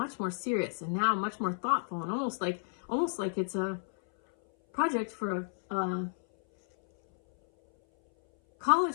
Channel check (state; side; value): silent; right; 57 dB below the other